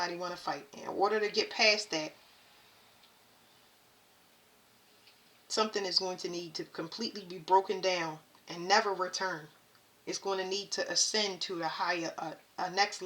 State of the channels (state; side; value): identical; both; correlation 1.00